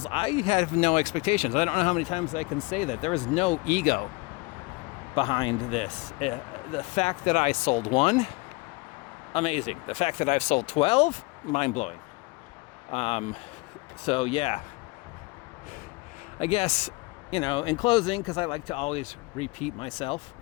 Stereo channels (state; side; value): quieter; right; 24.6 dB